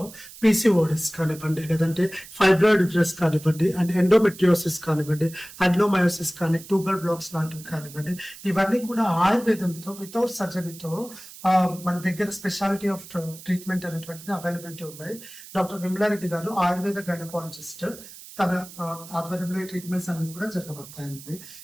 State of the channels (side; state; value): right; noise; hiss, 17 dB below the sound